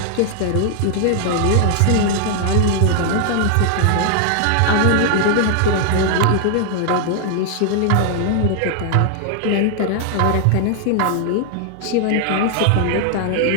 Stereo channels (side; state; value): both; different; correlation 0.00